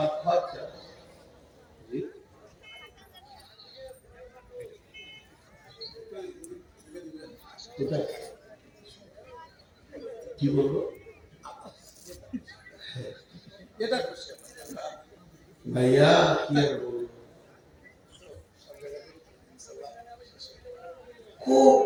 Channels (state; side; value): identical; both; correlation 1.00